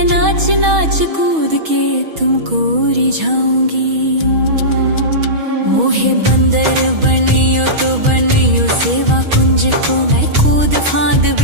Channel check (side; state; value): left; late; 6.3 ms